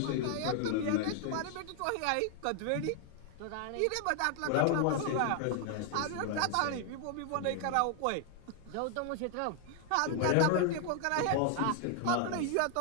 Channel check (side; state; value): both; different; correlation 0.00